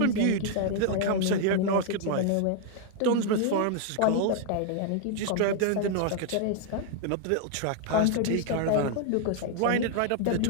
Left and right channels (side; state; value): both; different; correlation 0.00